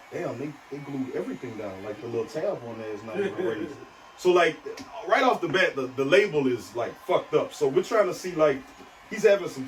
damn, they glued everything down. Like the little tab on there is not even raised. So like right off the bat, the label is like fucked up. So we're trying to see like, he's having some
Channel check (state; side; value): identical; both; correlation 1.00